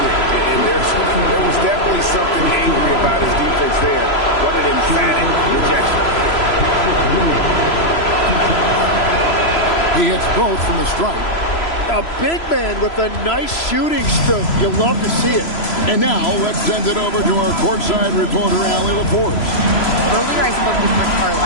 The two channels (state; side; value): late; right; 3.0 ms